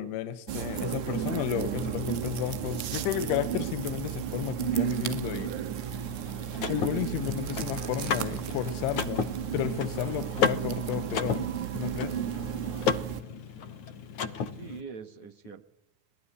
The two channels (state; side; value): late; right; 9.5 ms